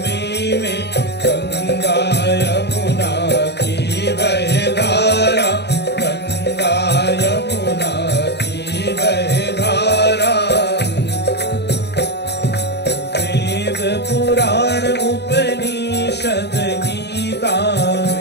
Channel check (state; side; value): late; right; 0.49 ms